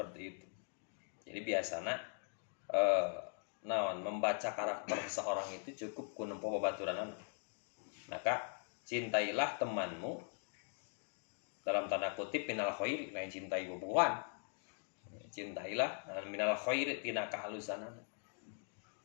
itu. Jadi biasana naon membaca karakter seseorang itu cukup ku nempo babaturanana. Maka cintailah temanmu dalam tanda kutip minal khairi, lain cintai bobogohan. Cintailah minal khairi tina kahalusanana.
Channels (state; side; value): silent; right; 50 dB below the other